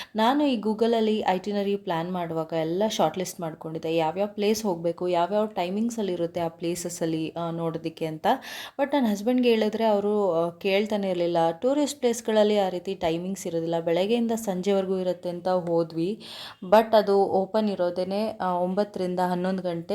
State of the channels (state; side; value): identical; both; correlation 1.00